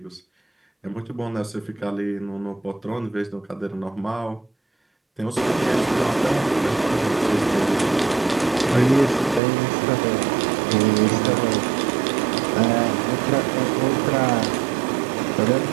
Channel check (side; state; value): left; drops out; at 9.4 s